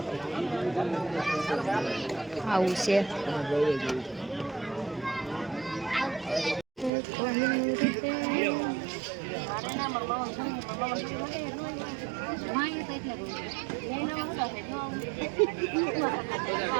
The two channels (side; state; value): left; drops out; at 6.9 s